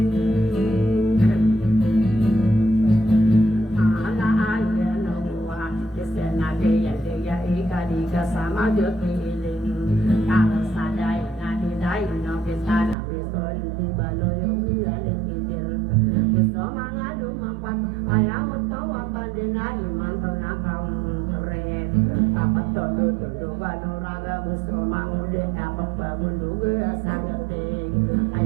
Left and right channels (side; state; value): left; drops out; at 13.0 s